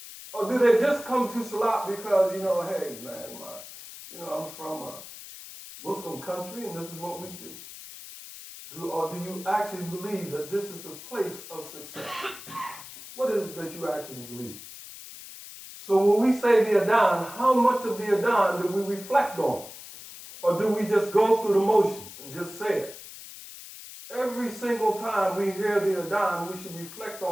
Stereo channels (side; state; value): left; noise; hiss, 14 dB below the sound